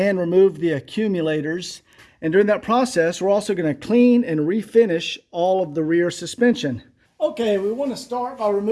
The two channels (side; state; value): both; identical; correlation 1.00